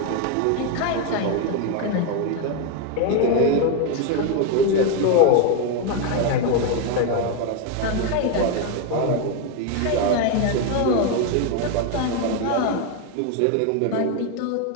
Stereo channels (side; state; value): both; different; correlation 0.01